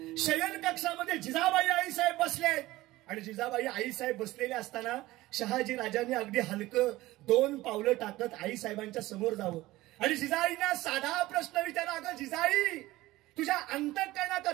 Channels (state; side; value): quieter; left; 17.9 dB